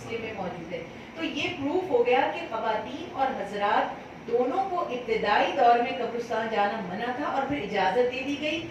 میں موجود ہے. تو یہ پروف ہو گیا کہ خواتین اور حضرات دونوں کو ابتدائی دور میں قبرستان جانا منع تھا اور پھر اجازت دے دی گئی.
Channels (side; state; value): both; identical; correlation 1.00